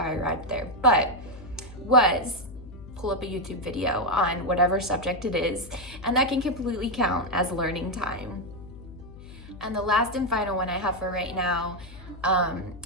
arrived there, but was pull up a YouTube video on whatever subject it is, and that can completely count as learning time. And the last and final one I have for right now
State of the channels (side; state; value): left; noise; hum, 16 dB below the sound